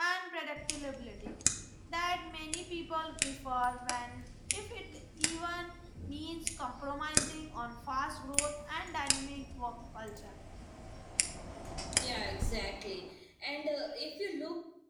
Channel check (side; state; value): both; identical; correlation 1.00